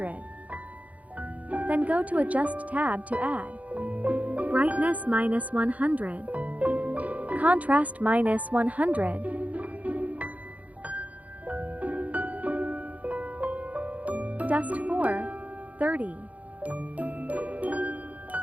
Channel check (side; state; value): left; late; 0.071 ms